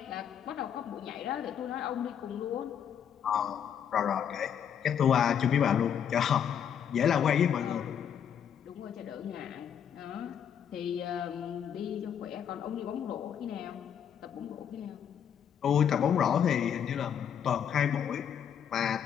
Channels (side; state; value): right; quieter; 8.5 dB